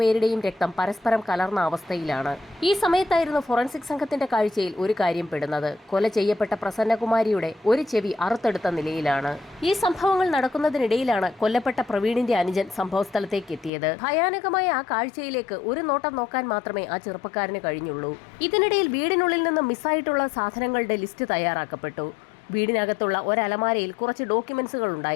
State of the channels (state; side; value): drops out; right; at 13.7 s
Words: രക്തം പരസ്പരം കലർന്ന അവസ്ഥയിലാണ്. ഈ സമയത്തായിരുന്നു ഫോറൻസിക് സംഘത്തിന്റെ കാഴ്ചയിൽ ഒരു കാര്യം പെടുന്നത്. കൊല ചെയ്യപ്പെട്ട പ്രസന്നകുമാരിയുടെ ഒരു ചെവി അറുത്തെടുത്ത നിലയിലാണ്. ഈ സംഭവങ്ങൾ നടക്കുന്നതിനിടയിലാണ് കൊല്ലപ്പെട്ട പ്രവീണിന്റെ അനുജൻ സംഭവസ്ഥലത്തേക്ക് എത്തിയത്. ഭയാനകമായ ആ കാഴ്ചയിലേക്ക് ഒരു നോട്ടം നോക്കാൻ മാത്രമേ ആ ചെറുപ്പക്കാരന് കഴിഞ്ഞുള്ളൂ. ഇതിനിടയിൽ വീടിനുള്ളിൽ നിന്ന് മിസ്സായിട്ടുള്ള സാധനങ്ങളുടെ ലിസ്റ്റ് തയ്യാറാക്കപ്പെട്ടു. വീടിനകത്തുള്ള ഒരലമാരയിൽ കുറച്ച് ഡോക്യുമെന്റ്സുകൾ